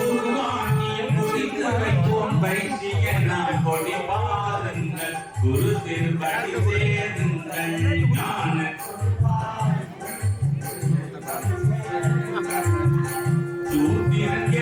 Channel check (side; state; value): both; identical; correlation 1.00